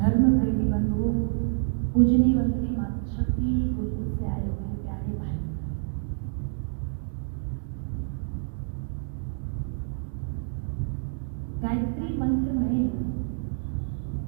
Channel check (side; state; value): left; silent; digital silence